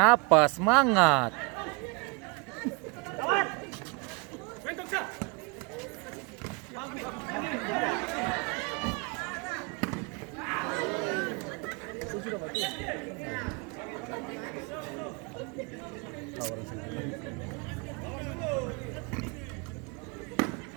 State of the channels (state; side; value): quieter; left; 31.6 dB